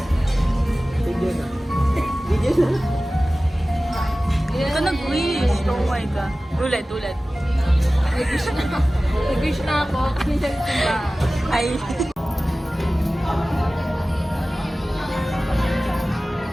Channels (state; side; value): normal; both; correlation 0.96